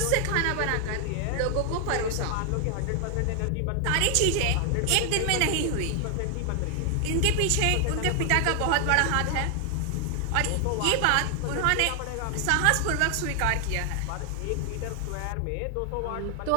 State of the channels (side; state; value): both; different; correlation 0.00